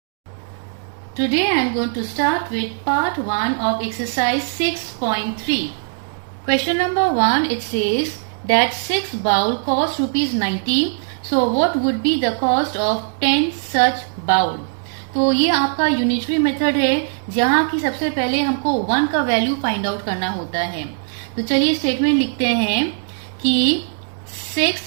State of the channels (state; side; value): silent; left; digital silence